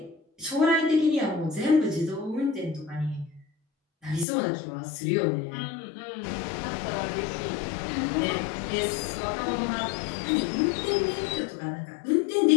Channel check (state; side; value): drops out; right; at 4.2 s